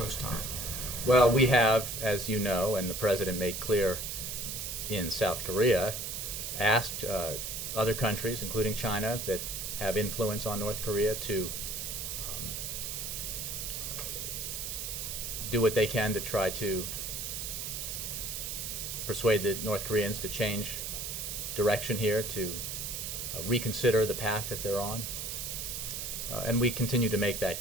time. Well, we have, as you know, and the president made clear in South Korea, asked other countries, including China, that have influence on North Korea to do what they can to try to persuade the North Koreans to change direction here, to reconsider the path that they're on. And we continue to make that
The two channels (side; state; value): right; noise; hiss, 4 dB below the sound